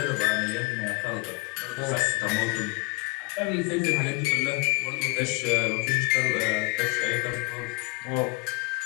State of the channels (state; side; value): quieter; right; 29.7 dB